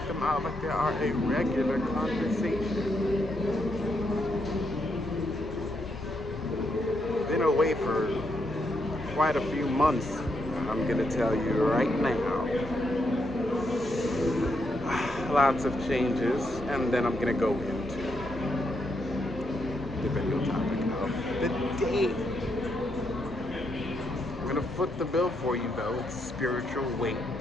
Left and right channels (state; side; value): normal; both; correlation 0.79